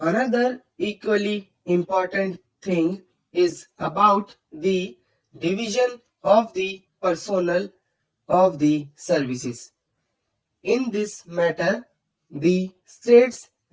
equally important thing is about the division of the personnel of the services. In this matter, the States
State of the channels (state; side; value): identical; both; correlation 1.00